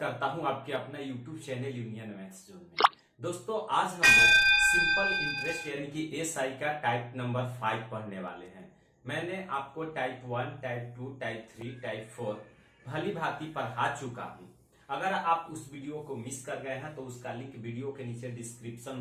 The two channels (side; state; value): both; identical; correlation 1.00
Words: हूं आपके अपना YouTube channel union maths zone में। दोस्तों आज हम लोग सिंपल इंटरेस्ट यानी कि एसआई का टाइप नंबर 5 पढ़ने वाले हैं। मैंने आपको टाइप 1, टाइप 2, टाइप 3, टाइप 4 भली भांति पढ़ा चुका हूं। अगर आप उस वीडियो को मिस कर गए हैं तो उसका लिंक वीडियो के नीचे डिस्क्रिप्शन